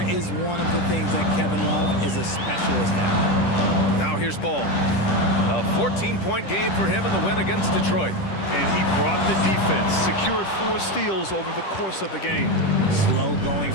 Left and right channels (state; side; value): late; right; 10 ms